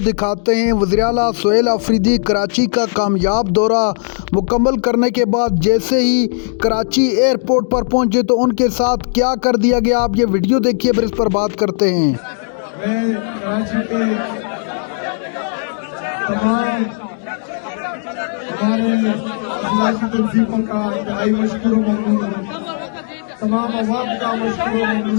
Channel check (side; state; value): right; silent; digital silence